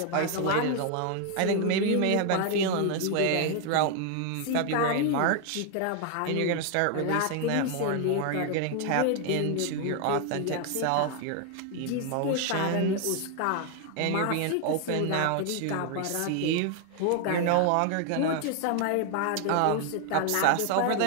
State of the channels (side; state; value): both; different; correlation 0.00